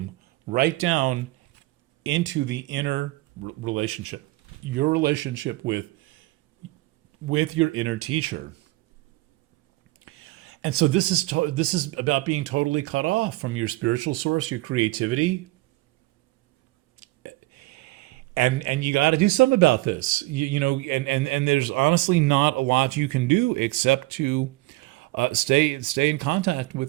right down into the inner relationship, your relationship with your inner teacher. And so this is about being totally cut off from your spiritual source, your creativity. And you got to do something about this, and there's honestly not a lot you can do except to stay in contact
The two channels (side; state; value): left; quieter; 20.4 dB